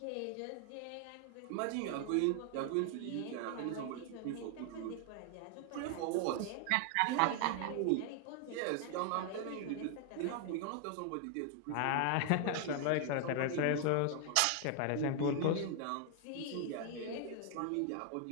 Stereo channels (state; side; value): different; both; correlation 0.00